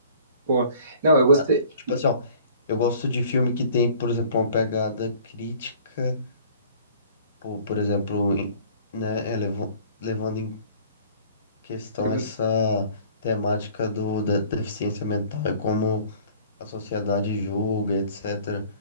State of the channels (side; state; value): both; inverted; correlation -0.51